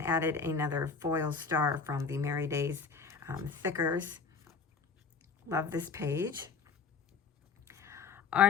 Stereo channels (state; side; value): quieter; right; 5.4 dB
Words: added another foil star from the Merry Days thickers. Love this page.